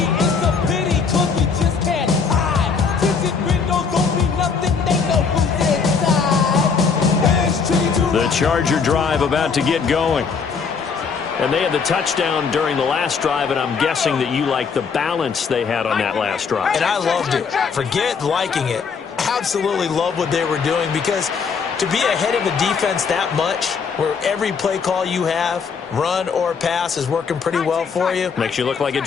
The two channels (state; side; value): quieter; right; 5.6 dB